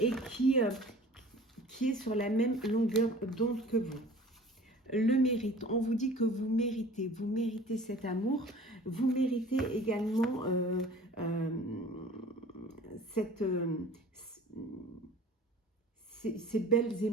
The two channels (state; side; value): normal; both; correlation 0.45